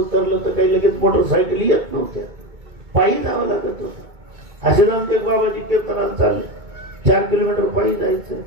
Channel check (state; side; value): late; left; 2.2 ms